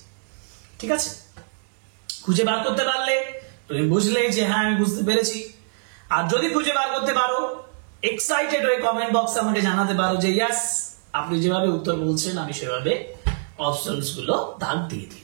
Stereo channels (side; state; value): left; silent; digital silence